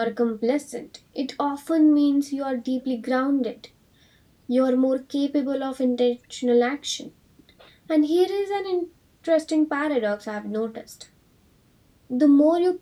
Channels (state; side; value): identical; both; correlation 1.00